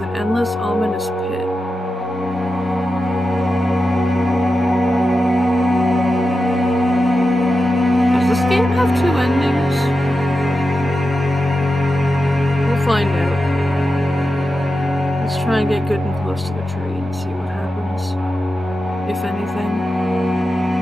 an endless, ominous pit. Does this game have two endings? We'll find out. Let's try and get good and close to the tree and see what happens. If anything.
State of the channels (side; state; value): both; normal; correlation 0.91